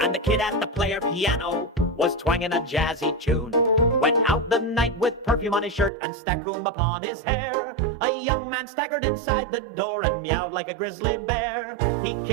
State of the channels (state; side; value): drops out; left; at 5.9 s